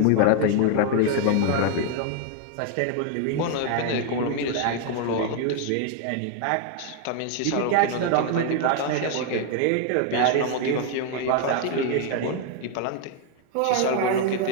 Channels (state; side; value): different; both; correlation 0.00